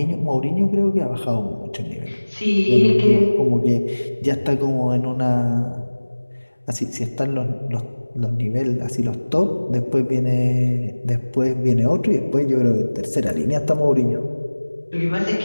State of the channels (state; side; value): inverted; both; correlation -1.00